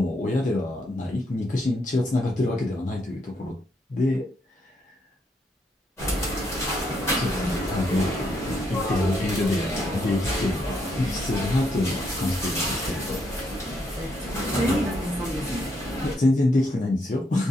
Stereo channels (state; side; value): normal; both; correlation 0.76